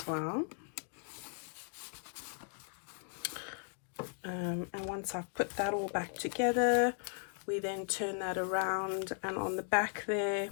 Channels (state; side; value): silent; right; 53 dB below the other